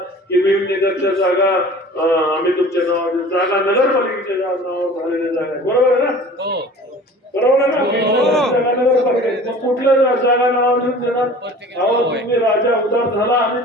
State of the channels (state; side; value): normal; both; correlation 0.44